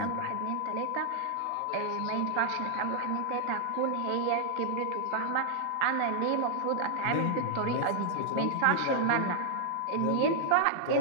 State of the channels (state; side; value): different; both; correlation -0.01